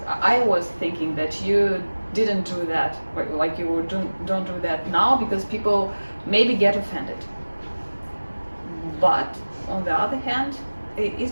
I was thinking that you didn't do that, like you don't do that now because people maybe get offended. But on the other hand,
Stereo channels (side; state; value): both; inverted; correlation -1.00